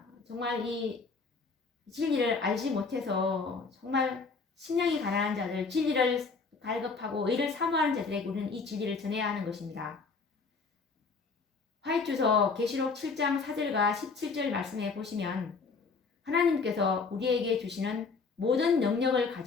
정말 이 진리를 알지 못해서 정말 심령이 가난한 자들, 진리를 갈급하고 의를 사모하는 자들에게 우리는 이 진리를 전해야 하는 것입니다. 화이트서 계시록 7장 4절과 17절 말씀에 보시면 하나님께서 우리에게 주시는 모든 능력을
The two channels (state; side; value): quieter; right; 4.6 dB